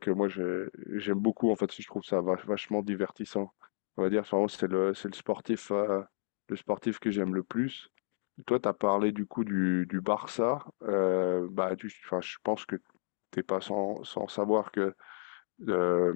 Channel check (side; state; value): right; silent; digital silence